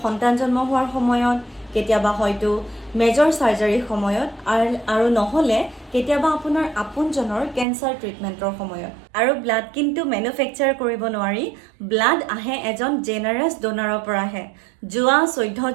সন্তান জন্ম হোৱাৰ সময়ত, কেতিয়াবা হয়তো মেজৰ চাৰ্জাৰীৰ সময়ত, আৰু নহ'লে কেতিয়াবা আপোনাৰ আপোনজনৰ কেঞ্চাৰ ট্ৰিটমেণ্টৰ সময়ত। আৰু ব্লাড কিন্তু মেনুফেকচাৰ কৰিব নোৱাৰি। ব্লাড আহে এজন জেনাৰাছ ডোনাৰৰ পৰাহে। যোৱা 14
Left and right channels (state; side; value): drops out; left; at 7.7 s